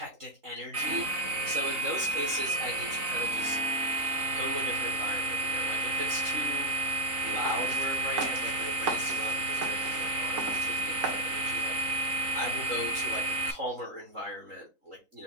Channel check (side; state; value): left; late; 3.9 ms